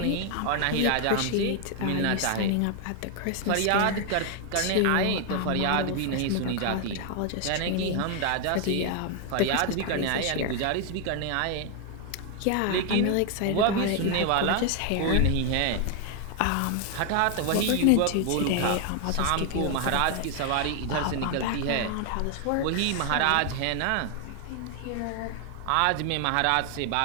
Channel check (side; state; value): both; different; correlation 0.00